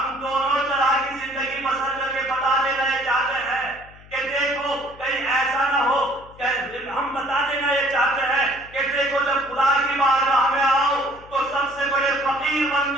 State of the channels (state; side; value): noise; left; hum, 22 dB below the sound